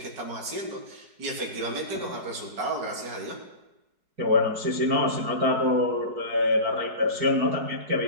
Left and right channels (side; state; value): left; late; 4.7 ms